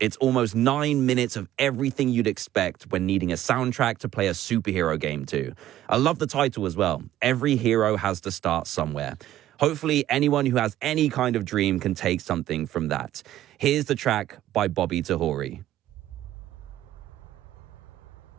almost 9 minutes of everything you'd expect when needing a soundtrack to play a superhero game to. I love the title as well. Every hero has to start somewhere. Hopefully, anyone who has any kind of dream can take something from that. Here's the track by Bobby Tahori.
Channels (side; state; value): left; quieter; 13.2 dB